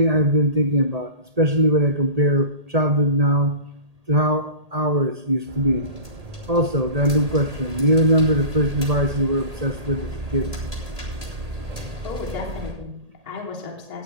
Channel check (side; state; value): left; late; 1.8 ms